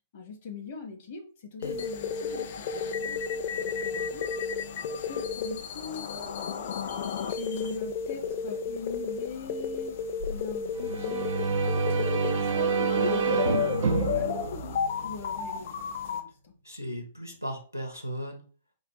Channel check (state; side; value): inverted; both; correlation -0.37